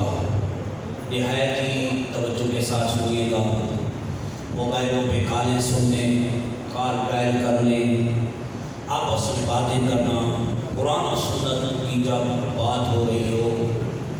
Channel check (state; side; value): identical; both; correlation 1.00